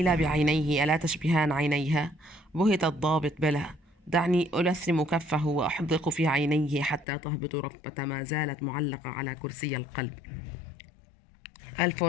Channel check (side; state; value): right; drops out; at 7.1 s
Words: بعينيه: ألا تشبهان عينيها؟ بهت الضابط: بلى. دعني ألثم كفه وأحدق في عينيه حتى تهبط رفة ما زالت معلقة على كرسي القلب.